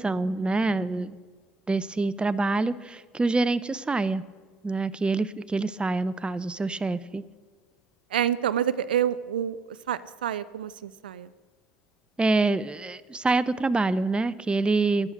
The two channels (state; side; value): quieter; left; 3.7 dB